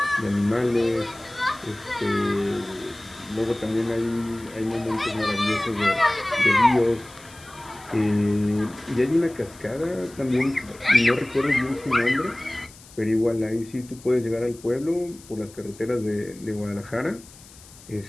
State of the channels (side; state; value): left; noise; hiss, 22 dB below the sound